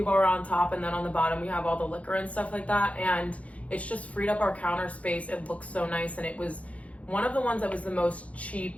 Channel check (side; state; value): right; late; 0.065 ms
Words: bar on top, and then on the bottom we have all the liquor and stuff like that, and it's just freed up our counter space. It looks so nice, and it was one of the ones that was the most